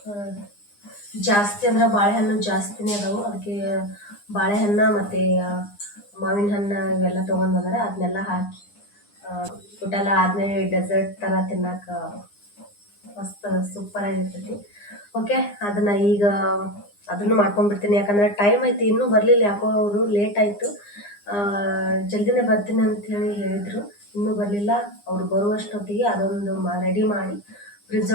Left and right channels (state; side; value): late; right; 9.8 ms